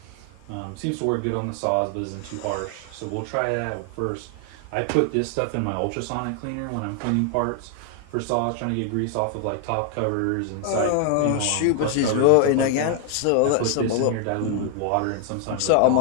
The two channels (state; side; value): different; both; correlation 0.00